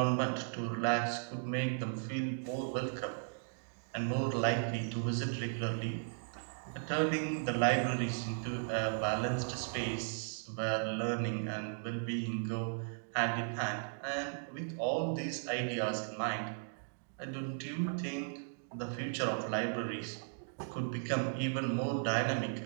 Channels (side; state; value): left; silent; digital silence